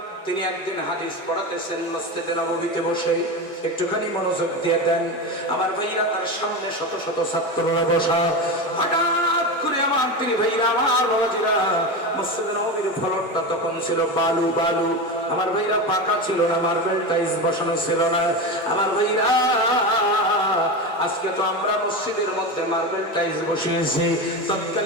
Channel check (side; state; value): both; normal; correlation 0.21